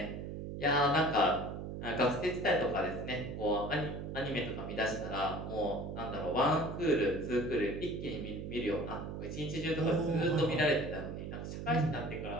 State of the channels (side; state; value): right; noise; hum, 7 dB below the sound